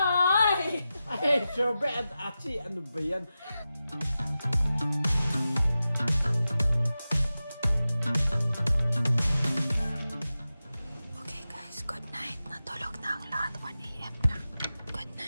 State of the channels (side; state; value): both; inverted; correlation -0.93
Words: Ay, Shobe at Achi, ano ba yan? Okay guys, good night. Natulog na ang lahat. 1 AM na. Good